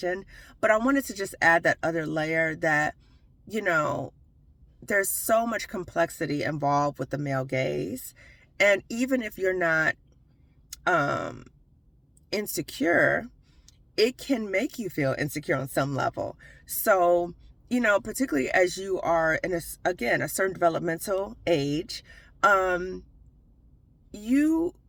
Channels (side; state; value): both; identical; correlation 1.00